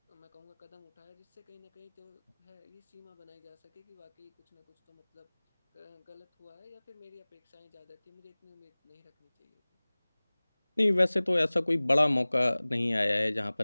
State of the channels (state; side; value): inverted; both; correlation -1.00